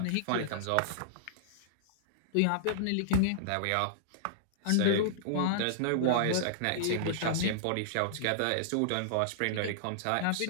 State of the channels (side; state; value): both; different; correlation -0.02